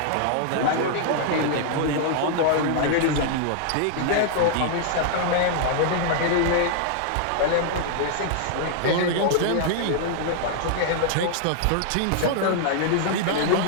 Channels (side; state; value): both; different; correlation -0.01